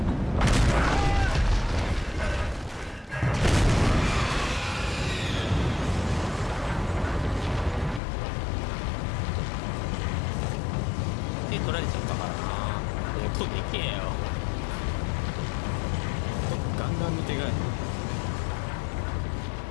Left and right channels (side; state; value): right; drops out; at 8.0 s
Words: 手取られちゃったからな。音でけえよ。ガンガンの手がなん